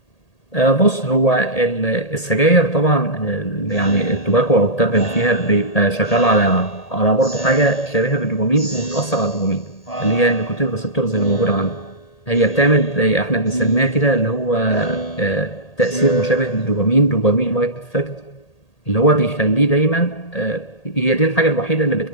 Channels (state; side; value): late; right; 1.8 ms